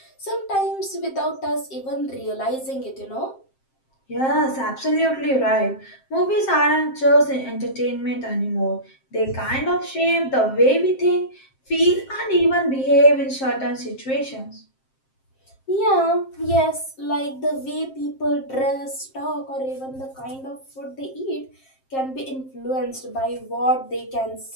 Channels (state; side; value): late; right; 7.6 ms